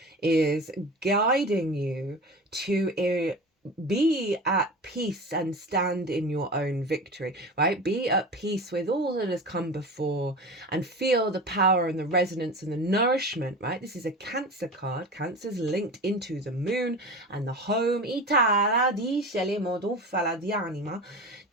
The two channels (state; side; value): normal; both; correlation 0.31